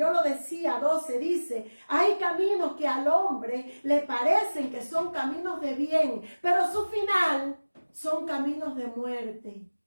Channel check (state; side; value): inverted; both; correlation -1.00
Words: lo decía, 12, dice, hay caminos que al hombre le parecen que son caminos de bien, pero su final son caminos de muerte.